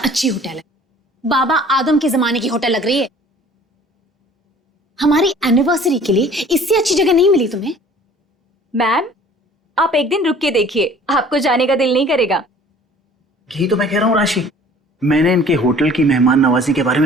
अच्छी होटल है, बाबा आदम के जमाने की होटल लग रही है। हमारी एनिवर्सरी के लिए इससे अच्छी जगह नहीं मिली तुम्हें? मैम, आप एक दिन रुक के देखिए, आपको जाने का दिल नहीं करेगा। यही तो मैं कह रहा हूँ राशि, मैंने इनके होटल की मेहमान नवाजी के बारे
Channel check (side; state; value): both; normal; correlation 0.50